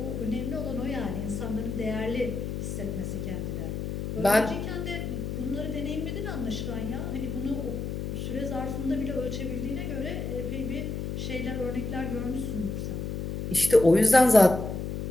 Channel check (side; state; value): left; noise; hum, 4 dB below the sound